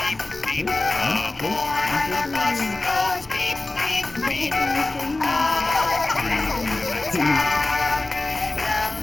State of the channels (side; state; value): right; quieter; 3.0 dB